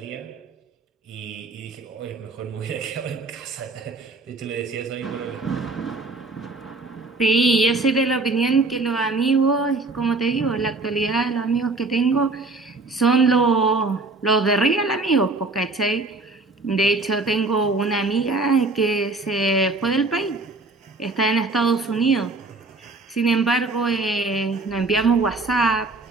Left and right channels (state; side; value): quieter; left; 3.4 dB